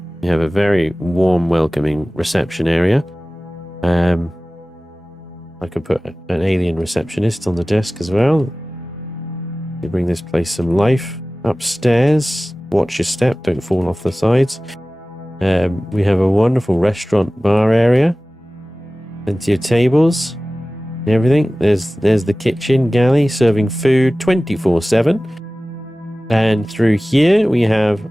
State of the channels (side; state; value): both; normal; correlation 0.97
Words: We have a very warm, welcoming reception area. I could put an alien receptionist on the desk as well. You bring this place some life. Upstairs, watch your step, don't fall off the sides. We have a wonderful restaurant bar area. Plenty of tables and everything. There's the kitchen galley serving food 24/7. And through here we have